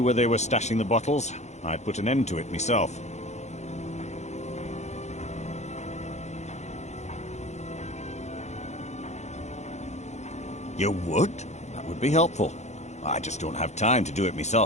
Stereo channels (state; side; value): late; right; 0.33 ms